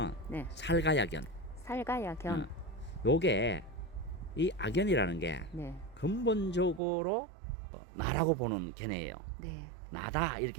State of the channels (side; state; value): left; drops out; at 6.8 s